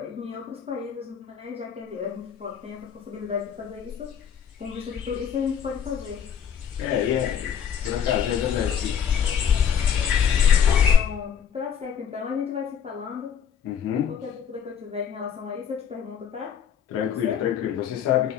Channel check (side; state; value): right; quieter; 8.2 dB